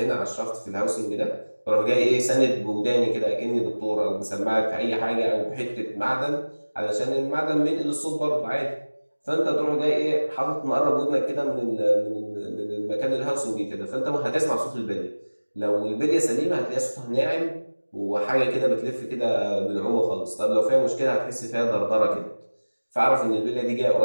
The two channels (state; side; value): inverted; both; correlation -1.00